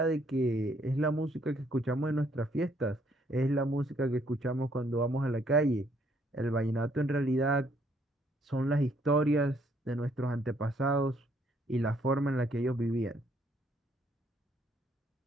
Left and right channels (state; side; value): normal; both; correlation 0.68